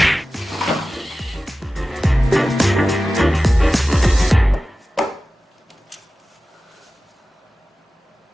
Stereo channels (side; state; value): both; normal; correlation 0.95